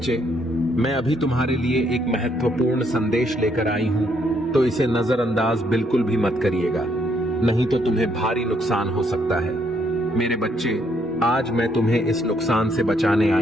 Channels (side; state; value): both; normal; correlation 0.71